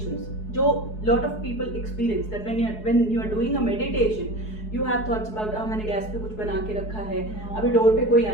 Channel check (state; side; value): late; right; 4.7 ms